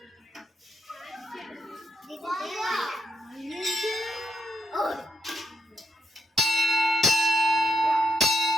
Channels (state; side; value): normal; both; correlation 0.80